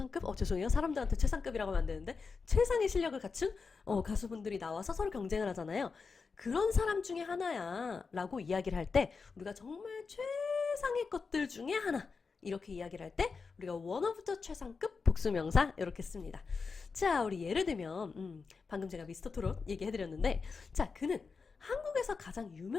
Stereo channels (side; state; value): right; quieter; 4.9 dB